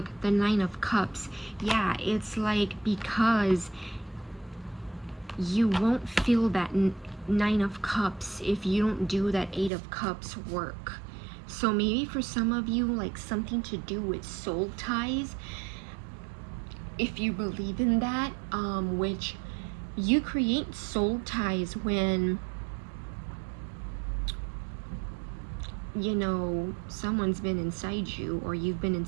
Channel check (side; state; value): left; drops out; at 9.7 s